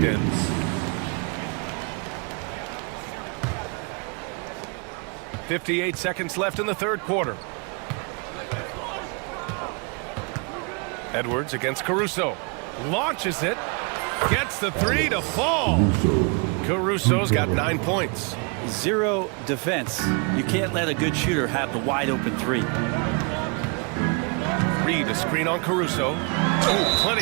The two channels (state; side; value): quieter; left; 34.1 dB